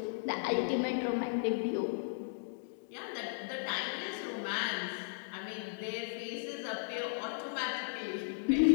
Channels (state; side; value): silent; right; digital silence